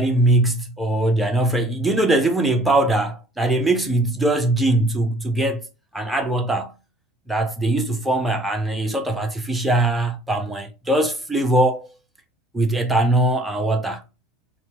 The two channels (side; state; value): both; normal; correlation 0.57